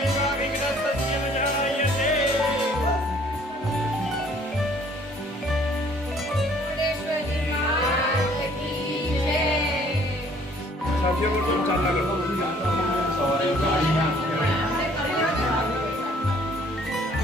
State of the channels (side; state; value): both; normal; correlation 0.59